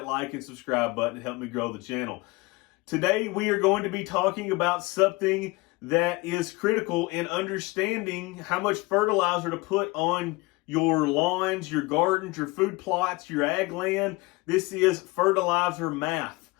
like and subscribe button to help me grow the channel. Today we are going to be talking about something that is critical in understanding how much fertilizer to put on your lawns, your gardens, your food plots, your ag land. This is fertilizer math.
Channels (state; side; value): quieter; right; 23.1 dB